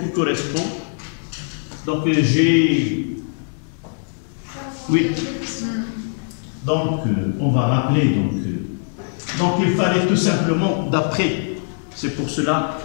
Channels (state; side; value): silent; right; 60 dB below the other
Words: qui correspond. Donc j'ai. Oui. Donc on va rappeler. Donc il fallait tout simplement, d'après, c'est pour cela,